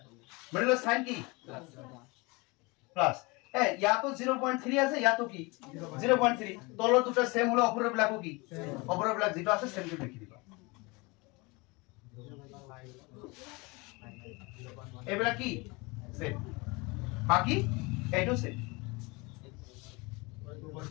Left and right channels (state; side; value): quieter; right; 26.1 dB